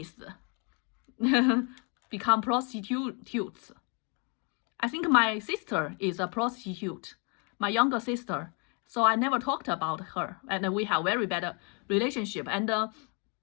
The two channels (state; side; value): quieter; right; 35.6 dB